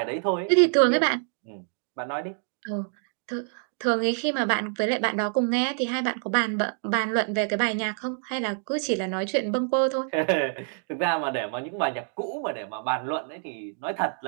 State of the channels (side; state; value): left; silent; 58 dB below the other